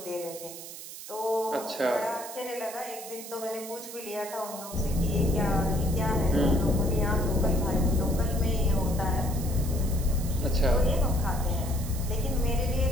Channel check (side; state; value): right; noise; hiss, 12 dB below the sound